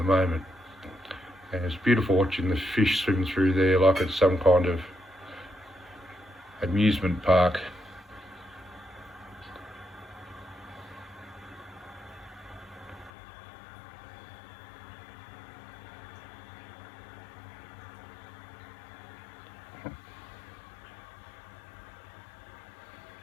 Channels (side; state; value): right; drops out; at 13.1 s